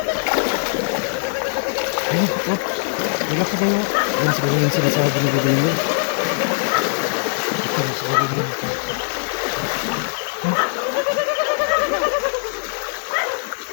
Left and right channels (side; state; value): right; silent; 64 dB below the other